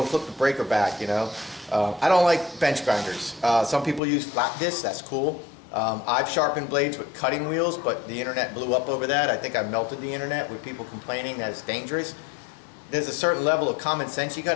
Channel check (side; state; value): right; drops out; at 4.0 s